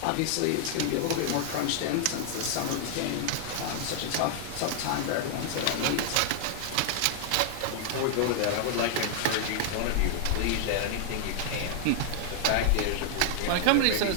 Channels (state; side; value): different; both; correlation -0.01